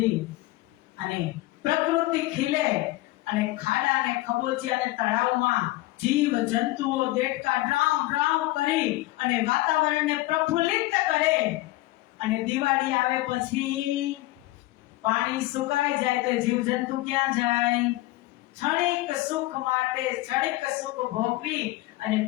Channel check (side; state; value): right; quieter; 18.6 dB